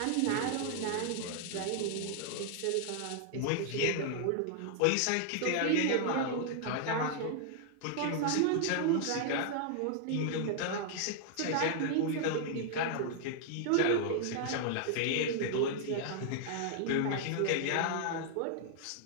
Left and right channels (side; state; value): both; different; correlation 0.00